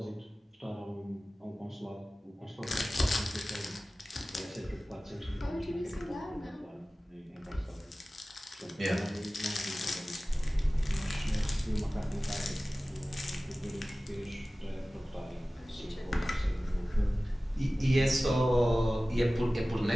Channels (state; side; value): normal; both; correlation 0.97